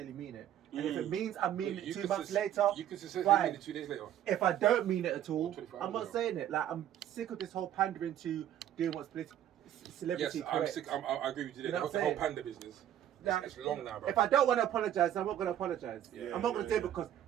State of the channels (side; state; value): left; quieter; 11.0 dB